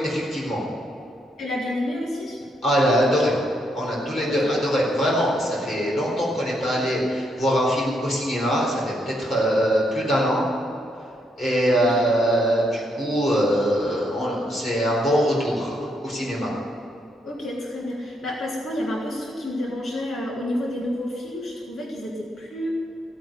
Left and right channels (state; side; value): normal; both; correlation 0.76